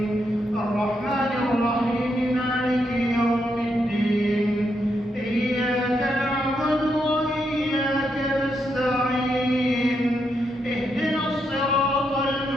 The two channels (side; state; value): both; normal; correlation 0.80